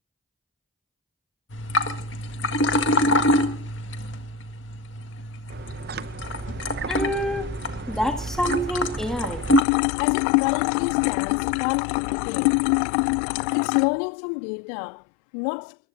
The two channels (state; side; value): drops out; right; at 9.6 s